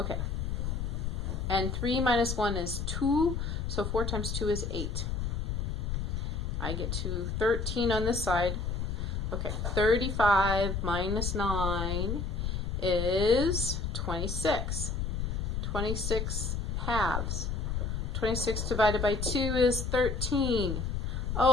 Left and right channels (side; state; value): left; noise; rumble, 1 dB below the sound